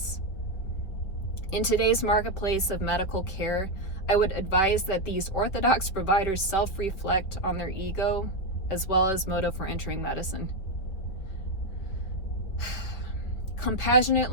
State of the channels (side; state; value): right; late; 4.9 ms